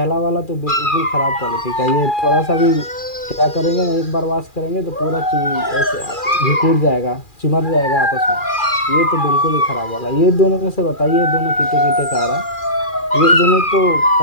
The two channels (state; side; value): late; right; 2.4 ms